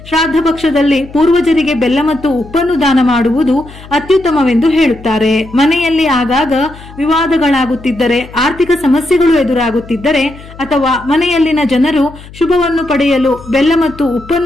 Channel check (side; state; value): left; noise; hum, 18 dB below the sound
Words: ಶ್ರಾದ್ದ ಪಕ್ಷದಲ್ಲಿ ಪೂರ್ವಜರಿಗೆ ಬೆಲ್ಲ ಮತ್ತು ಉಪ್ಪನ್ನು ದಾನ ಮಾಡುವುದು ಅತ್ಯುತ್ತಮವೆಂದು ಹೇಳುತ್ತಾರೆ. ಮನೆಯಲ್ಲಿ ಆಗಾಗ ವಿವಾದಗಳಾಗುತ್ತಿದ್ದರೆ, ಆರ್ಥಿಕ ಸಮಸ್ಯೆಗಳು ಎದುರಾಗುತ್ತಿದ್ದರೆ ಅಥವಾ ಮನೆಯಲ್ಲಿನ ಜನರು ಶುಭವನ್ನು ಪಡೆಯಲು ಬೆಲ್ಲ ಮತ್ತು